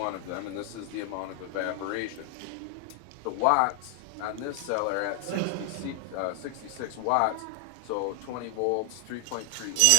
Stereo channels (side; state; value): both; different; correlation 0.00